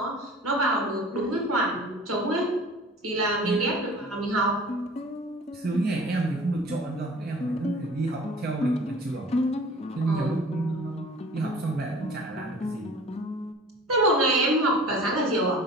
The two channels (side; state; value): both; normal; correlation 0.45